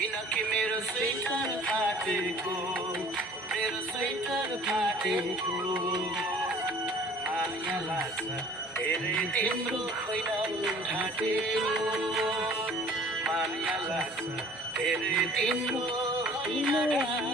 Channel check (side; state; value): both; normal; correlation 0.50